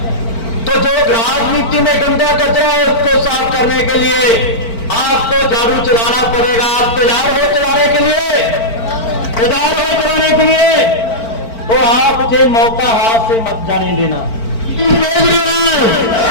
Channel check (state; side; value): late; right; 4.5 ms